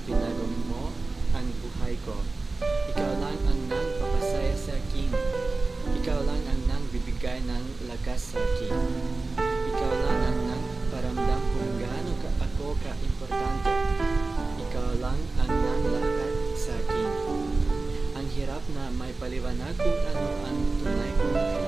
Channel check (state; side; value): quieter; left; 3.5 dB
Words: binago mo ang buhay ko. Ikaw lang ang nagpapasaya sa akin. Ikaw lang ang nagbibigay ng lakas sa akin. Ikaw lang ang nagparamdam kung gaano ako ka-importante. Ikaw lang ang nanglakat sa akin. Ang hirap na may paliwanag kung ano ang tunay kong